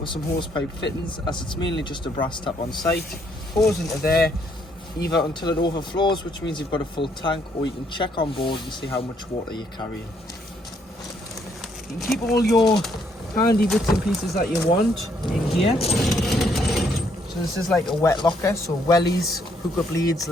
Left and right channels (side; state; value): both; normal; correlation 0.70